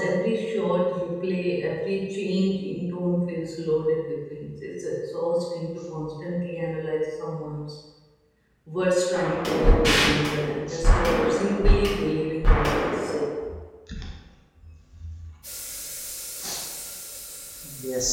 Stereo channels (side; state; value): both; identical; correlation 1.00